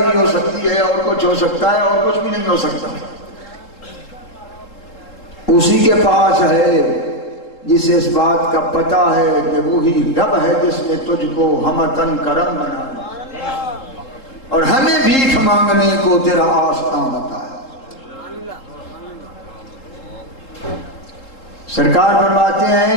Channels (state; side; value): late; right; 3.7 ms